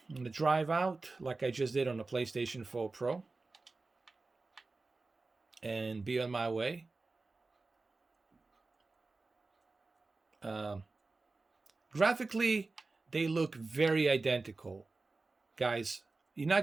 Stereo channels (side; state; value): left; quieter; 3.6 dB